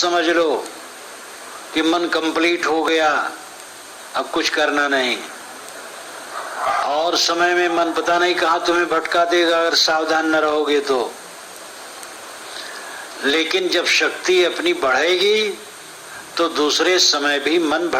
लो कि मन कंप्लीट हो गया, अब कुछ करना नहीं। और समय में मन पता नहीं कहां तुम्हें भटका देगा अगर सावधान न रहोगे तो। लेकिन जब शक्ति अपनी बढ़ेगी तो दूसरे समय भी मन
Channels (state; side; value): identical; both; correlation 1.00